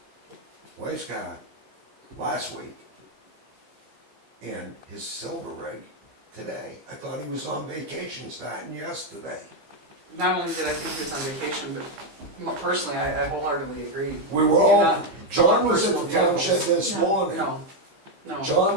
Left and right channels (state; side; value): late; left; 15 ms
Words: wife's car last week, and his silver rig today. I thought he was on vacation starting yesterday. Not only did I think he was on vacation, but personally, I wholeheartedly agree. We were You're all, not- John was at personal the town shed vehicles. this morning. No, no.